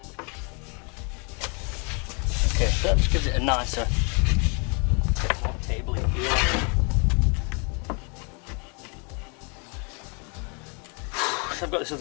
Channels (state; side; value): quieter; right; 34.6 dB